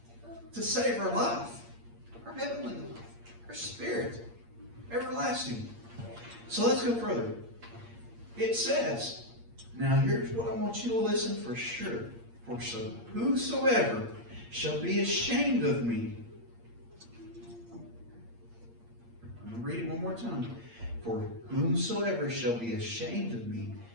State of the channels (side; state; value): left; late; 8.6 ms